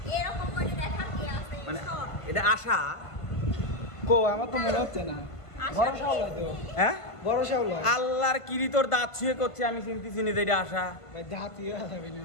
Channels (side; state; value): right; late; 1.5 ms